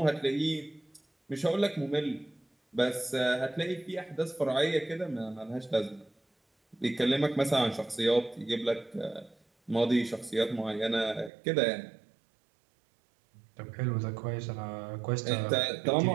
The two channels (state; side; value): drops out; left; at 11.3 s